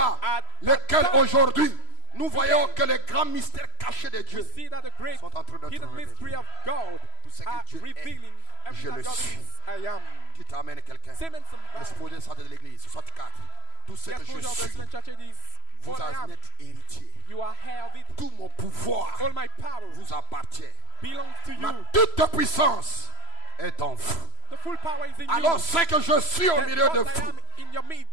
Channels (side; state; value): right; late; 3.0 ms